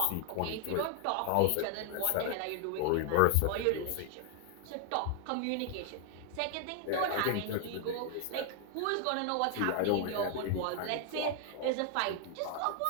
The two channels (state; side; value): different; both; correlation 0.00